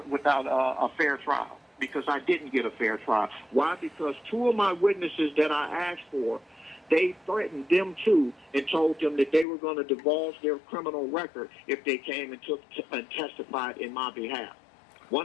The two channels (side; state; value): right; drops out; at 9.5 s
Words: fair trial because I didn't get a fair trial. Why? Because two of my witnesses that I asked for, they threatened them too and told them that they were going to divulge their criminal record if they came and testified in my behalf.